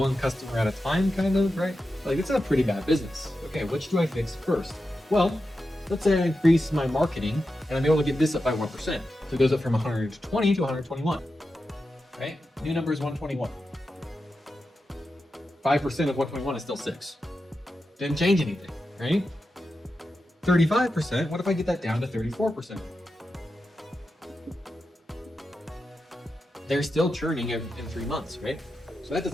customer at a time, kind of, right? Like, it's a pretty bad business. Okay, which do I fix first? Well, let's say I increase my marketing and I'm able to get this up by 1%. So it goes up from 120 to 121, right? New number is 121. 5% of 121 is still 6. Didn't change anything, right? 35%, what if I get that down to 34%? They're still churning in 3 months, right? So that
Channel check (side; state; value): both; normal; correlation 0.90